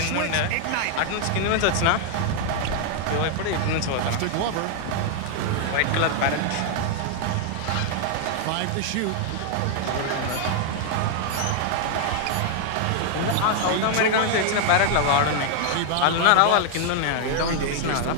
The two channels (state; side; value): different; both; correlation 0.00